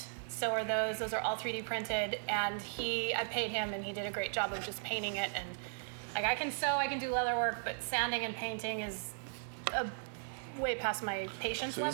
So are those. Those are all 3D printed, and I paid him, and he did a great job of just painting it. And I can sew, I can do leather work, but sanding and painting is a way past my patience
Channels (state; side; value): silent; left; digital silence